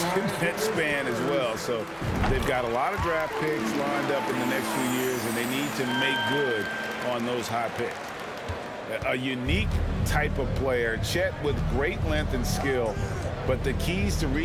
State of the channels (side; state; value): both; identical; correlation 1.00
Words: in that span as well. So they've got a lot of draft picks lined up in the next few years, and they need to make good on those high picks. A unique type of player, Chet with great length and skill, but the keys to